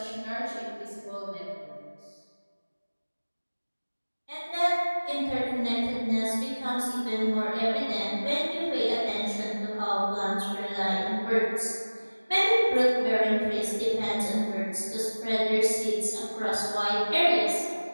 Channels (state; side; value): inverted; both; correlation -1.00